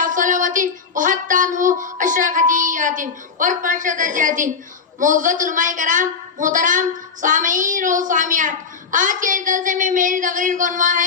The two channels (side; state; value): right; quieter; 5.5 dB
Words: صلوات وحتى عنه 10 خطيئات ورفع درجات معزز علماء کرام محترم سامعین و سامعات آج کے اس جلسے میں میری تقریر کا عنوان